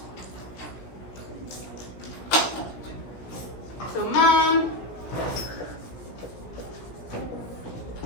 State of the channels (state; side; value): late; right; 16 ms